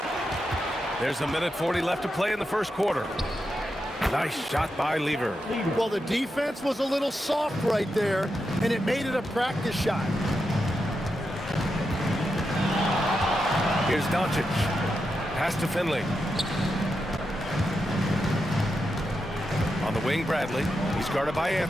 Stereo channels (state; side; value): normal; both; correlation 0.87